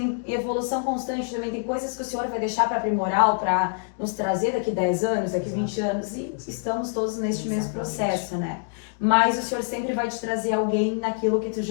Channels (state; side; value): silent; right; digital silence